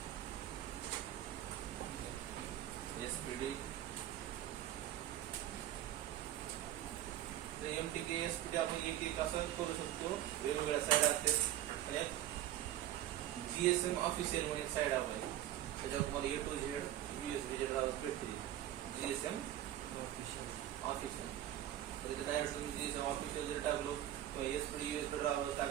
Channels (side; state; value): left; quieter; 12.8 dB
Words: SPD MTK SPD आपण एक असं करू शकतो. वेगवेगळ्या साईड असते आणि GSM ऑफिशियल म्हणून साईड आहे, त्याच्यावर तुम्हाला A to Z USB चे ड्रायव्हर्स भेटतील. GSM ऑफिशियल म्हणजे डायरेक्ट तुम्ही GSM ऑफिशियल जर टाकलो किंवा SPD USB ड्रायव्हर्स